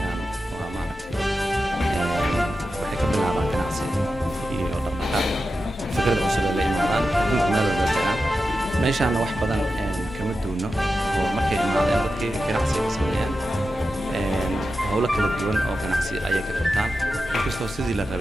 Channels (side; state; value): both; normal; correlation 0.91